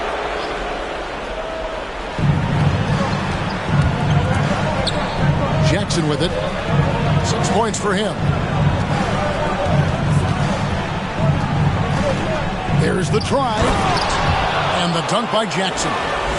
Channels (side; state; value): both; identical; correlation 1.00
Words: Jackson with it. 6 points for him. There's the try. And the dunk by Jackson.